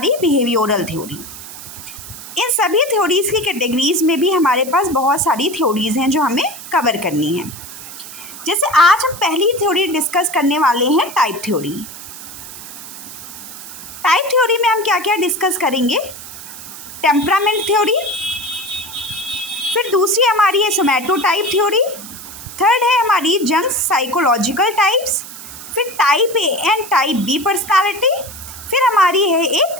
बिहेवियरल थ्योरी। इन सभी थ्योरीज़ की कैटेगरीज में भी हमारे पास बहुत सारी थ्योरीज़ हैं जो हमें कवर करनी है। जैसे आज हम पहली थ्योरी डिस्कस करने वाले हैं टाइप थ्योरी। टाइप थ्योरी में हम क्या क्या डिस्कस करेंगे? टेम्परामेंट थ्योरी, फिर दूसरी हमारी है सोमैटोटाइप थ्योरी, थर्ड है हमारी जंग्स साइकोलॉजिकल टाइप्स, फिर type A and type B personality, फिर हमारी है एक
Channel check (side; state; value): right; noise; hiss, 13 dB below the sound